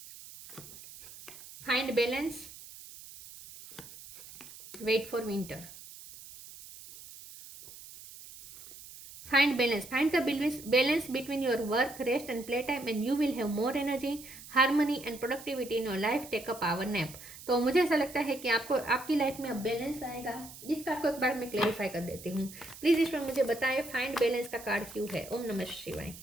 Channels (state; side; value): noise; right; hiss, 16 dB below the sound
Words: Find balance, wait for winter. Find balance, find the balance between your work, rest and playtime, and you will have more energy, harmony and productivity in your life. Take a power nap. तो मुझे ऐसा लगता है कि आपको आपकी life में अब बैलेंस आएगा, जिसका आपको एक बार मैं क्लैरिफाई कर देती हूँ। प्लीज ईश्वर मुझे बताएं फाइंड बैलेंस का कार्ड क्यों है। ओम नमः शिवाय।